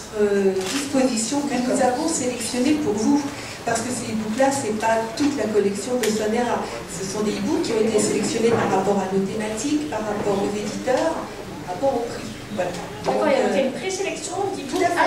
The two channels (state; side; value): identical; both; correlation 1.00